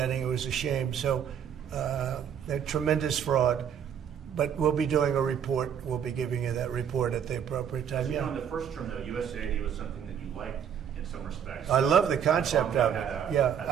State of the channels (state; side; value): quieter; left; 8.5 dB